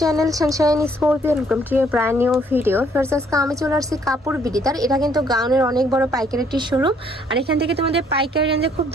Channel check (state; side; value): normal; both; correlation 0.65